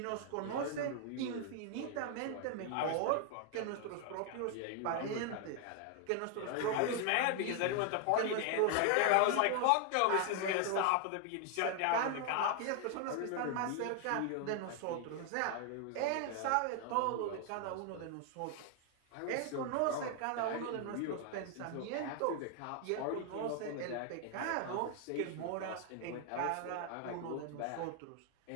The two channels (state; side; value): different; both; correlation 0.00